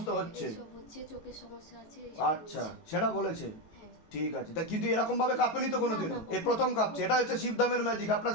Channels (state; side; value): late; right; 19 ms